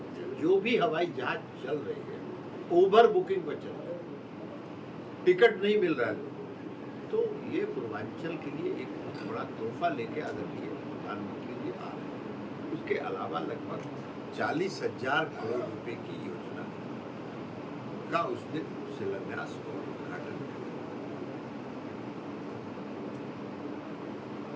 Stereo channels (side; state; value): both; identical; correlation 1.00